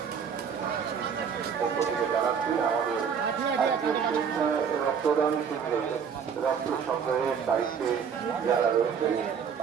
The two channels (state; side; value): quieter; left; 6.9 dB